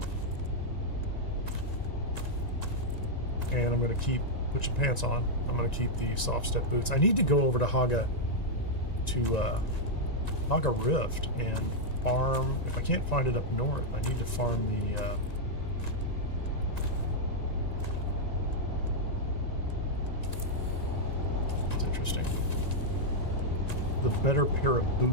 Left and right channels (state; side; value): late; right; 1.9 ms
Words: And I'm going to put your pants on. I'm going to keep the soft step boots. I need to go over to Haga Rift and farm. If I can't find it up north, I need to farm the it's interesting. the better pair of